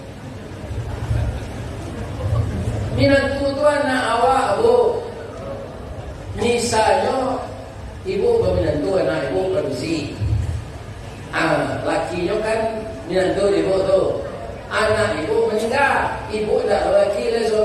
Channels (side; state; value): both; identical; correlation 1.00